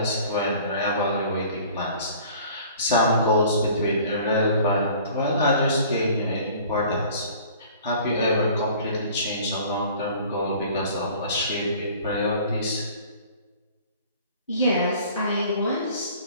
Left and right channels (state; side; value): inverted; both; correlation -0.49